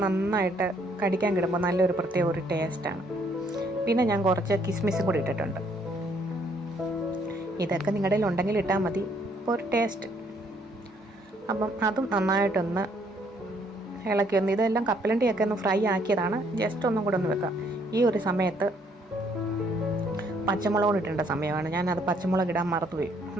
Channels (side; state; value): both; normal; correlation 0.67